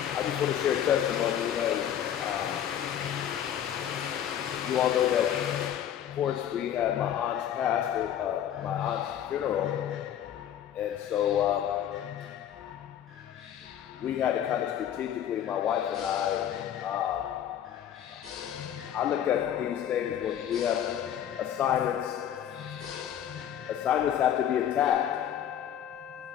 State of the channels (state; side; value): quieter; right; 10.0 dB